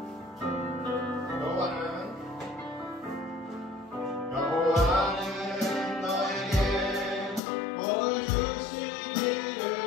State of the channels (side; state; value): right; drops out; at 7.4 s